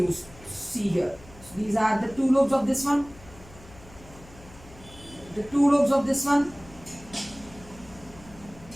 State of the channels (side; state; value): left; noise; hum, 21 dB below the sound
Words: See here. So these are the 2 lobes of this one. The 2 lobes of this one.